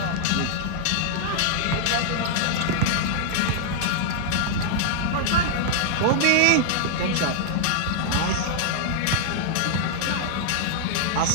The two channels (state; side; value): different; both; correlation -0.01